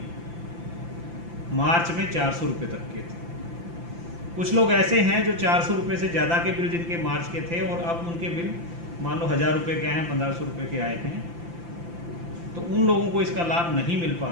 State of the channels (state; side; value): late; left; 5.9 ms